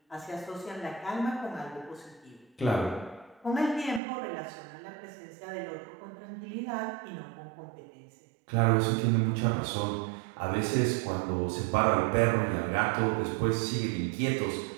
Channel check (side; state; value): left; drops out; at 4.0 s